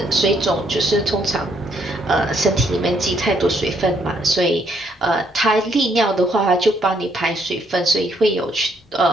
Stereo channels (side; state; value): both; normal; correlation 0.71